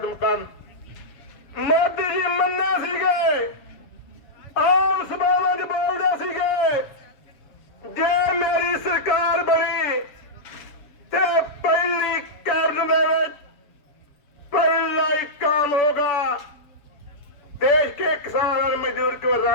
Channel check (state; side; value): late; right; 7.5 ms